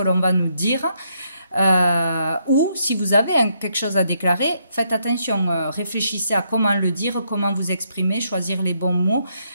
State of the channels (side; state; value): both; inverted; correlation -0.75